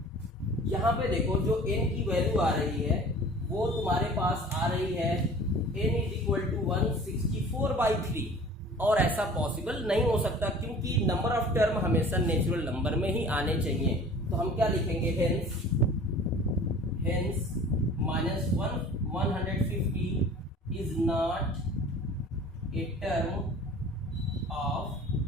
यहाँ पे देखो जो n की value आ रही है वो तुम्हारे पास आ रही है n is equal to 164 by 3, और ऐसा पॉसिबल नहीं हो सकता क्योंकि नंबर ऑफ टर्म हमेशा नेचुरल नंबर में ही आने चाहिए. तो हम क्या लिखेंगे, hence minus 150 is not a term of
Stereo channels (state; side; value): normal; both; correlation 0.45